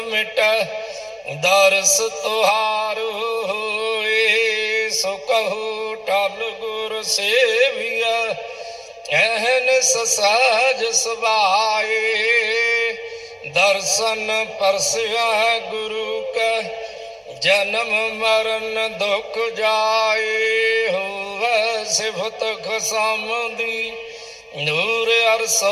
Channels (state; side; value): identical; both; correlation 1.00